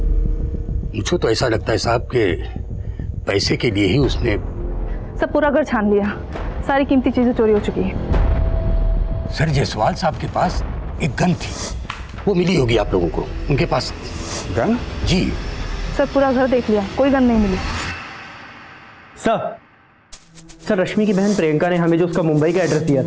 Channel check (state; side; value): identical; both; correlation 1.00